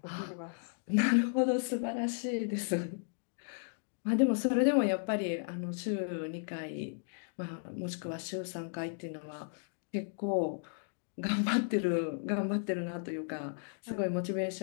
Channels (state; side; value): silent; right; digital silence